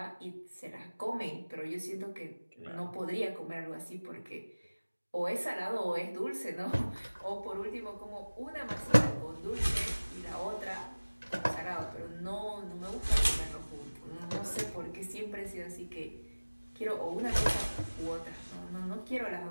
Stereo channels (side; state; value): both; inverted; correlation -1.00